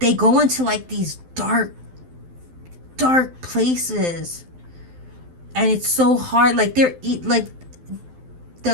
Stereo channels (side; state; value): left; late; 12 ms